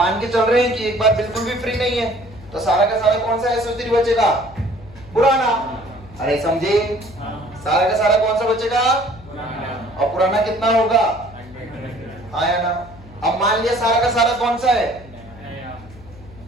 के चल रहे हैं कि एक बार बिल्कुल भी फ्री नहीं है, तो सारा का सारा कौन सा SO3 बचेगा? पुराना। अरे समझे? सारा का सारा कौन सा बचेगा? और पुराना कितना होगा? हाँ या ना? अब मान लिया सारा का सारा कौन सा है?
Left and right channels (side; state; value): left; noise; hum, 20 dB below the sound